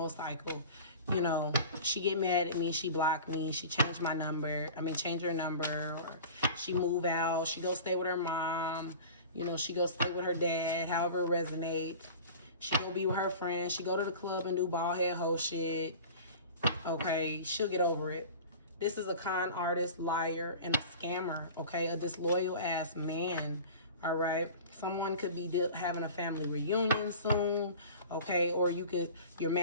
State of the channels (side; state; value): both; inverted; correlation -0.38